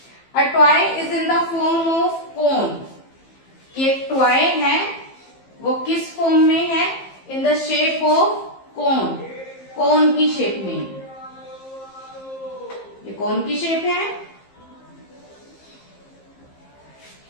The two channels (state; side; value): late; right; 15 ms